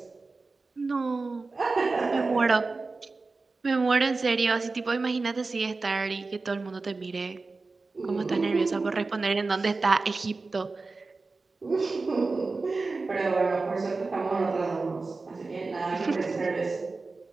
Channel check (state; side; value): quieter; left; 3.8 dB